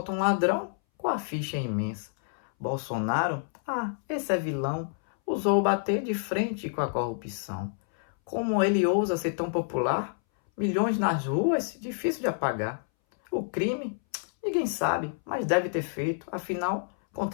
um ladrão com a ficha imensa. Bolsonaro, esse é vilão, usou bater de frente com a corrupção. Como ele ousa ser tão popular? Milhões nas ruas, difícil de apagar. O crime, ninguém sabe, mas deve ter feito. Afinal,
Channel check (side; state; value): right; silent; 59 dB below the other